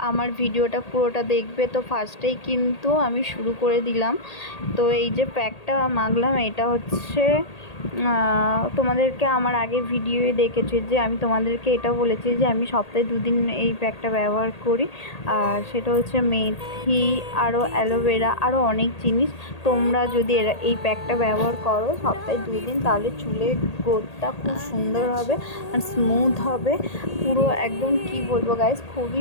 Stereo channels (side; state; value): right; late; 1.8 ms